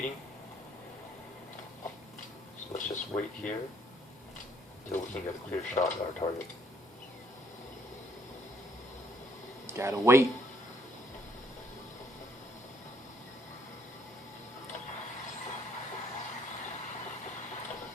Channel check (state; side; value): normal; both; correlation 0.65